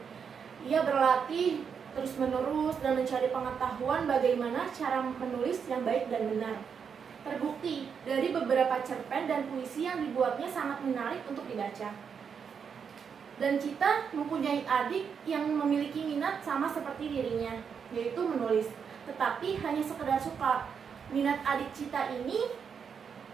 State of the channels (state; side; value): quieter; left; 6.7 dB